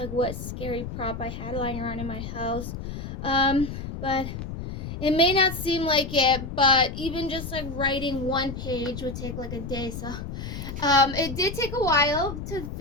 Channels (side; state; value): left; noise; rumble, 7 dB below the sound